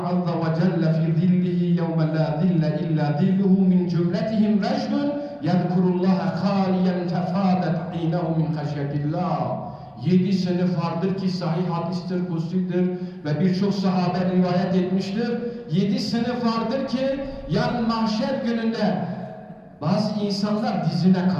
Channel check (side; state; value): both; identical; correlation 1.00